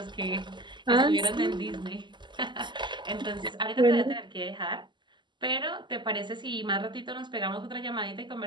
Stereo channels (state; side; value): late; left; 0.22 ms